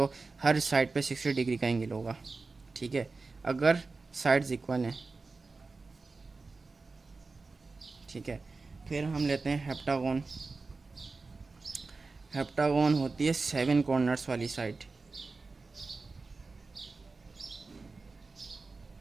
हर साइड पे 60 डिग्री का एंगल होगा। ठीक है, अगर साइड्स इक्वल हैं। ठीक है, फिर हम लेते हैं हेप्टागन। हेप्टागन होती है 7 कॉर्नर्स वाली साइड।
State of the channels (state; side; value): quieter; left; 3.9 dB